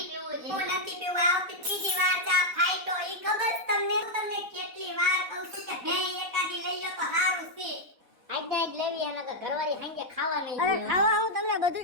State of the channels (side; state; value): left; late; 4.1 ms